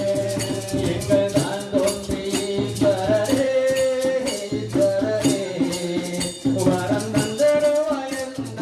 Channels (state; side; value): identical; both; correlation 1.00